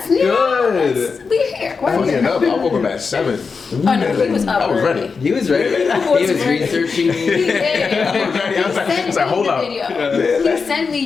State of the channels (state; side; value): quieter; right; 5.1 dB